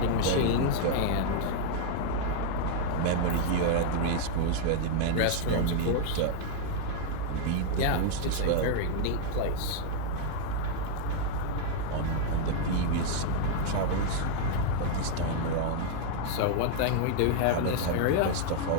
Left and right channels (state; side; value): different; both; correlation 0.00